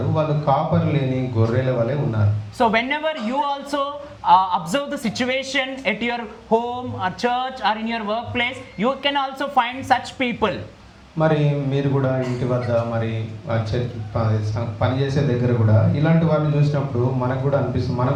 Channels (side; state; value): both; identical; correlation 1.00